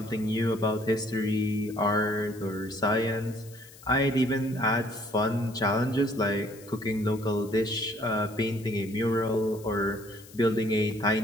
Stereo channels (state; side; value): noise; left; hiss, 21 dB below the sound